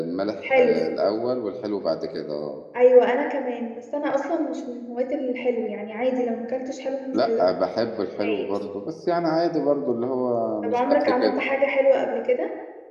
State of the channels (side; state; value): both; identical; correlation 1.00